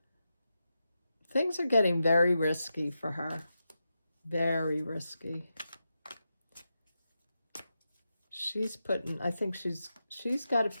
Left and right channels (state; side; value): inverted; both; correlation -0.89